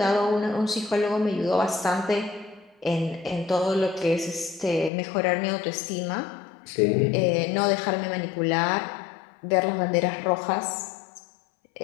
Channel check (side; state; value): right; drops out; at 4.9 s